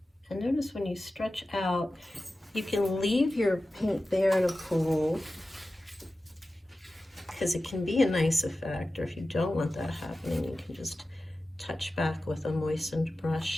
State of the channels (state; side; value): normal; both; correlation 0.95